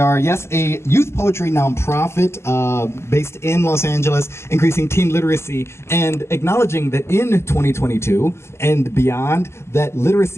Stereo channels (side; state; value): right; late; 0.13 ms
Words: yes, a youth poetry nonprofit based in Los Angeles, increasing teen literacy and acknowledging that in 2022 and beyond, that